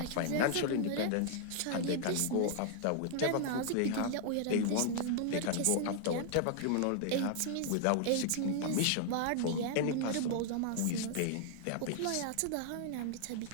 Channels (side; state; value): both; different; correlation -0.01